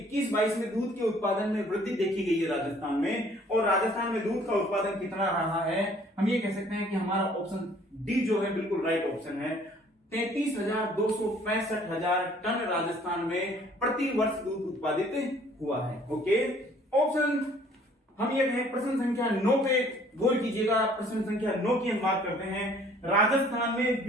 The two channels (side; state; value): both; normal; correlation 0.57